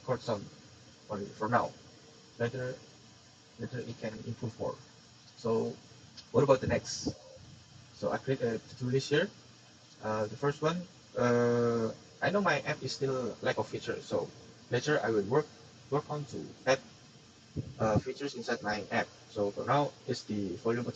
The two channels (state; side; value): identical; both; correlation 1.00